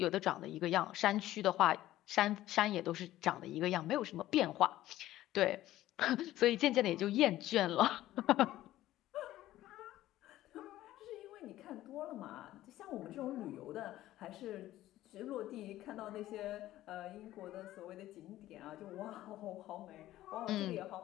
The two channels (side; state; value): right; quieter; 14.7 dB